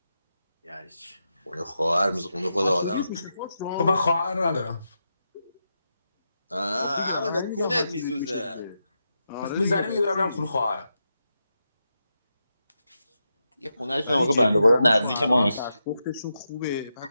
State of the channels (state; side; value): inverted; both; correlation -0.86